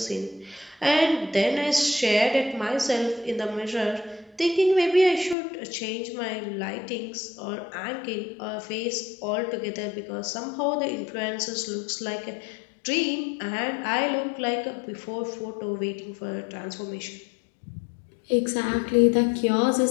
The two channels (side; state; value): right; drops out; at 5.4 s